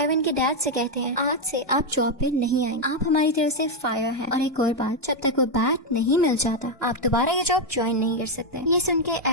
के डैड से कहते हैं आज से आप जॉब पे नहीं आएंगे, आप हमारी तरफ से फायर हैं। और एक और बात, जब तक वो बैट नहीं मिल जाता आप दोबारा ये जॉब ज्वाइन नहीं कर सकते। ये सुन के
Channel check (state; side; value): normal; both; correlation 0.03